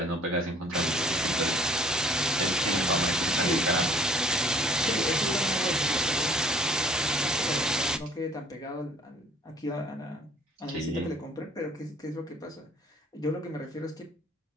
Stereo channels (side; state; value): both; normal; correlation 0.53